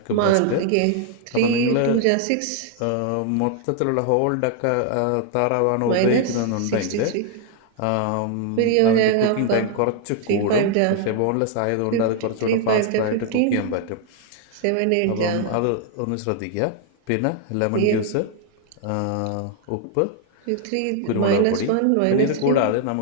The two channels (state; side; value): different; both; correlation 0.00